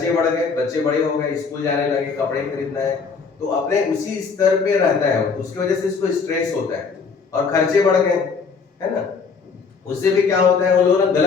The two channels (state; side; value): quieter; right; 5.2 dB